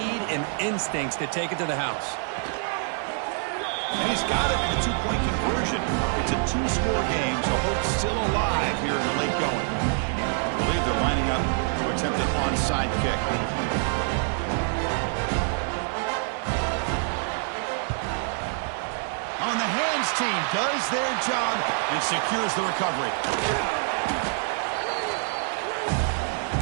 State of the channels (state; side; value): silent; left; 56 dB below the other